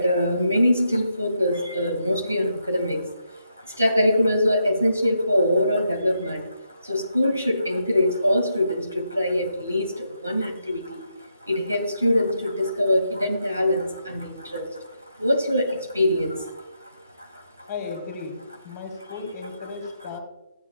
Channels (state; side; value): inverted; both; correlation -0.80